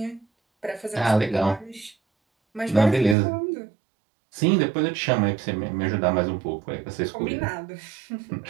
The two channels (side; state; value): left; drops out; at 3.2 s